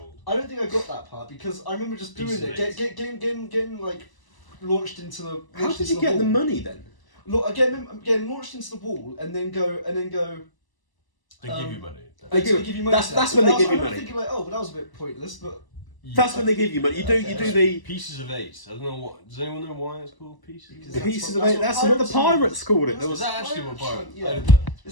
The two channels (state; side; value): late; right; 1.0 ms